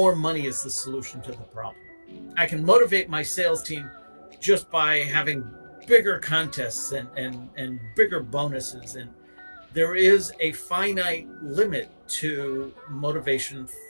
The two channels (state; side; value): inverted; both; correlation -1.00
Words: money is the solution to the problem. I can motivate my sales team just by having bigger contests and bigger bonuses. And there is a finite limit to motivation